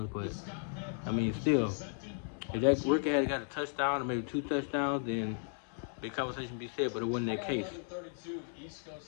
but I mean, still, if that rookie had got a touchdown or maybe 2 touchdowns, then big conversation be said, but it wasn't that case.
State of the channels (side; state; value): right; silent; 54 dB below the other